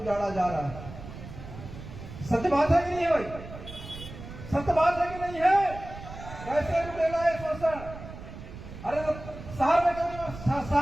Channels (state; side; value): noise; right; rumble, 13 dB below the sound